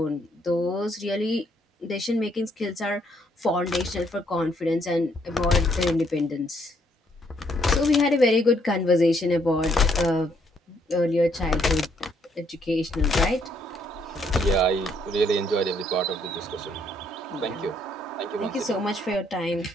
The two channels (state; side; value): normal; both; correlation 0.70